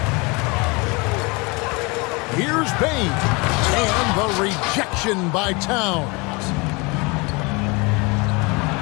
Here's Bain. And the rejection by Towns.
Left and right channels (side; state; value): right; quieter; 27.6 dB